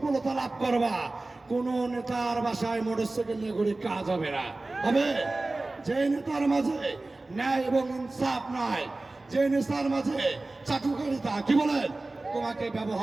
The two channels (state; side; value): quieter; left; 3.0 dB